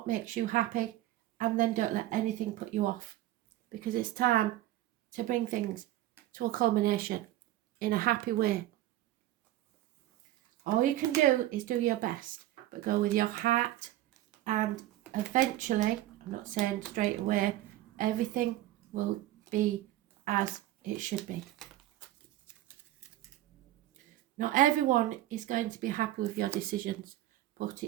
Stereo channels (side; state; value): left; quieter; 14.7 dB